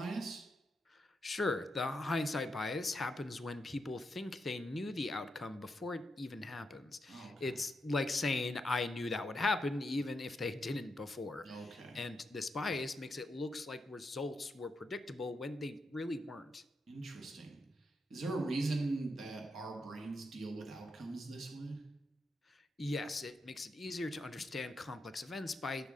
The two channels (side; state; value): both; normal; correlation 0.84